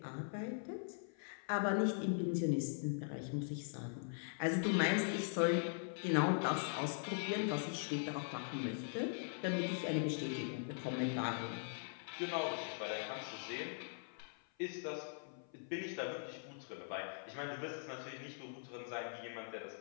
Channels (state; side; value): silent; right; 50 dB below the other